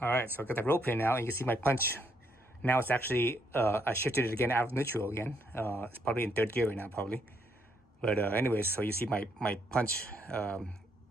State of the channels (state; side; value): normal; both; correlation 0.73